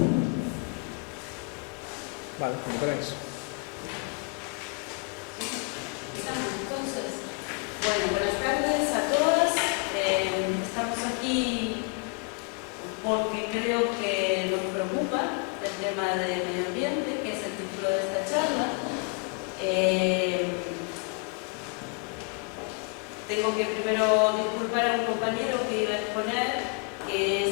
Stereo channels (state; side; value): quieter; right; 32.0 dB